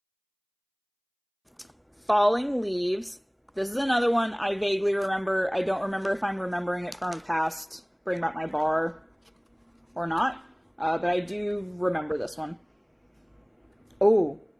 Falling Leaves. This is another one I vaguely remember. I don't remember if I'm remembering it from a past Bring Back My Bar or not. But I do remember this one. Oh,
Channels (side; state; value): both; identical; correlation 1.00